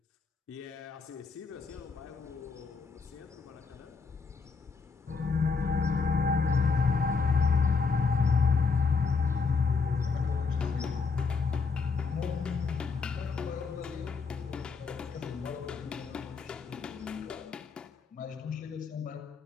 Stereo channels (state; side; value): quieter; right; 4.9 dB